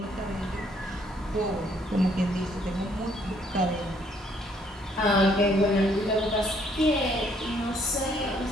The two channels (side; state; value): both; normal; correlation 0.67